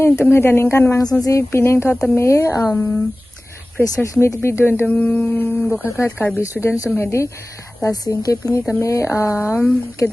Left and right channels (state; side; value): normal; both; correlation 0.98